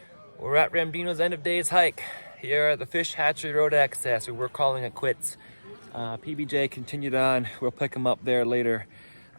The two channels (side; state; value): both; inverted; correlation -1.00